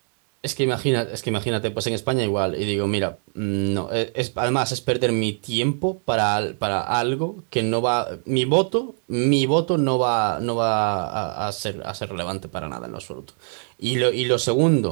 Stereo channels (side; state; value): left; silent; 56 dB below the other